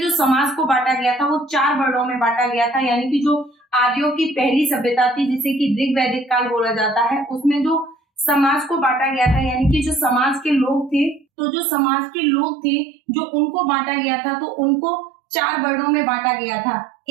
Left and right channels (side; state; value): left; drops out; at 11.2 s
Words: जो समाज को बांटा गया था वो 4 वर्णों में बांटा गया था। यानी कि जो आर्यों की पहली सभ्यता थी जिसे कि ऋग्वैदिक काल बोला जाता है, उसमें जो समाज को बांटा गया था, यानी कि जो समाज के लोग थे, तो जो समाज के लोग थे जो उनको बांटा गया था, तो उनको 4 वर्णों में बांटा गया था।